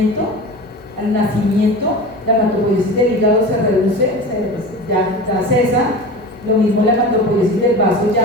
nacimiento la hematopoiesis del hígado se reduce, ya cesa. Lo mismo la hematopoiesis del vaso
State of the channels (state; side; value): normal; both; correlation 0.31